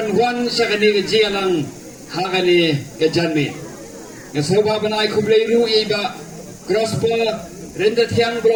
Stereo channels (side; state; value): both; identical; correlation 1.00